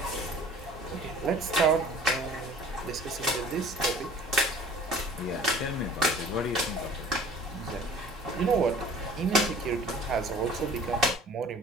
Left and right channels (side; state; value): both; normal; correlation 0.47